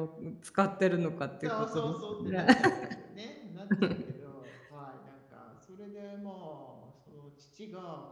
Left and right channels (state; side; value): identical; both; correlation 1.00